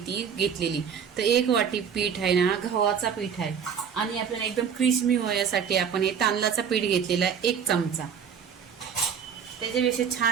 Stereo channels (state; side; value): quieter; left; 7.3 dB